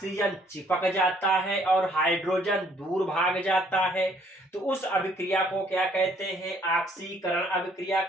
चिपक जाता है और हाइड्रोजन दूर भाग जाता है, तो उस अभिक्रिया को क्या कहते हैं, ऑक्सीकरण अभिक्रिया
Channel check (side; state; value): both; normal; correlation 0.63